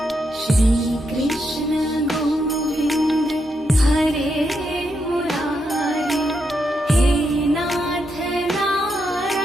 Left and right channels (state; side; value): normal; both; correlation 0.82